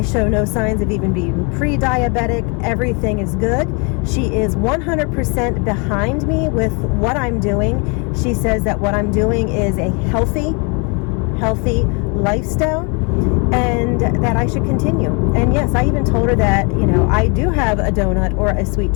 show no signs of even being pre-diabetic. Everything is good. She is 100% behind me with what I'm doing. She says that what I'm doing is a healthy lifestyle and that I should continue. And yes, I even told her that, I do have a donut or a sweet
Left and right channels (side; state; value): right; quieter; 33.4 dB